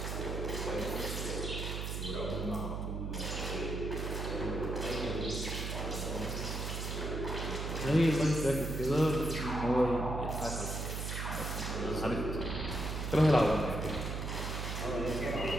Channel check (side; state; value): right; noise; hum, 3 dB below the sound